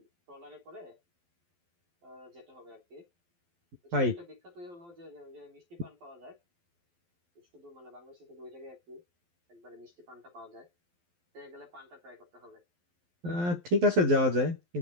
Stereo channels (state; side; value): late; left; 12 ms